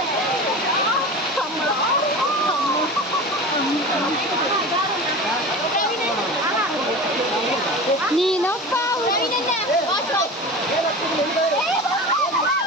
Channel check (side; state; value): both; normal; correlation 0.32